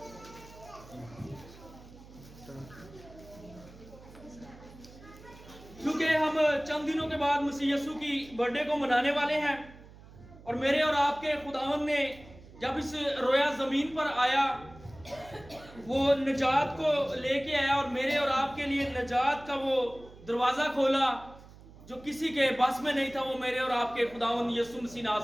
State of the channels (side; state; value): right; noise; hum, 20 dB below the sound